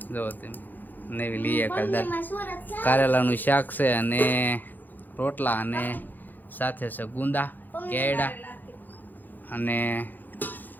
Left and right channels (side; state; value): right; late; 0.086 ms